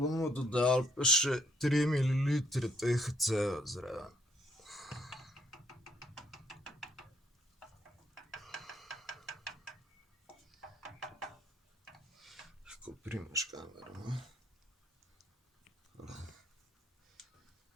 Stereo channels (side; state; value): both; normal; correlation 0.69